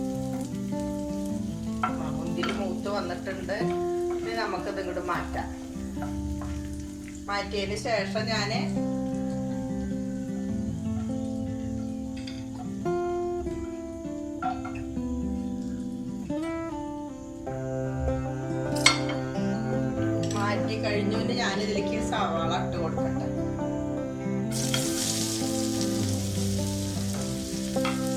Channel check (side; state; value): both; identical; correlation 1.00